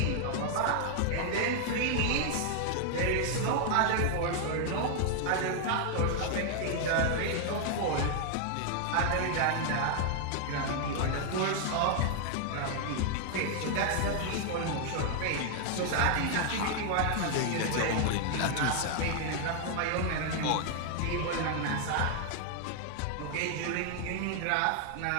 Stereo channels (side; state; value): both; different; correlation 0.00